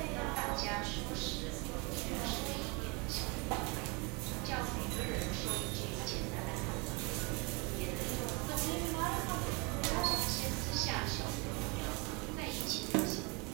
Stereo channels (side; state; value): left; quieter; 29.4 dB